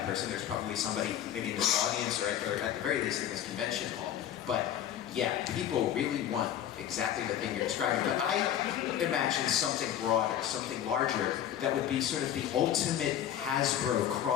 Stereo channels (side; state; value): right; quieter; 10.6 dB